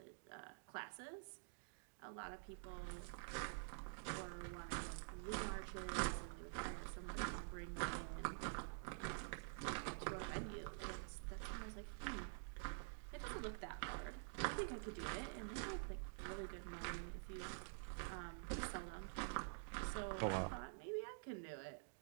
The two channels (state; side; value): silent; left; digital silence